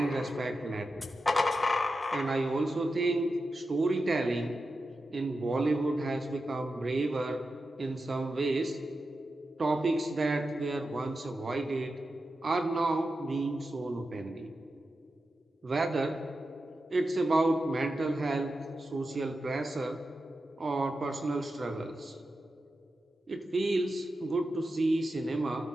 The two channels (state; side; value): normal; both; correlation 0.90